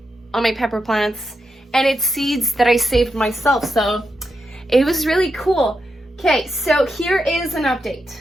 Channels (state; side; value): normal; both; correlation 0.85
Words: on my pepper plants. And it's seeds that I saved myself, so it was really cool. Okay, so here is an update.